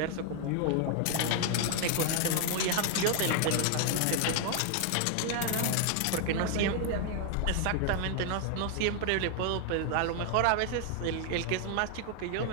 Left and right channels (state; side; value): different; both; correlation 0.00